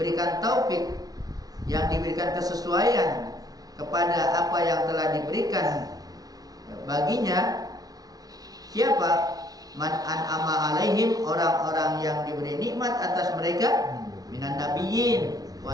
taufik, yang diberikan kesesuaian kepada apa yang telah diberikan baginya, siapa? Man an'ama alaihim, orang-orang yang diberi nikmat atas mereka, minan nabiyyin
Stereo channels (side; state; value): left; late; 0.18 ms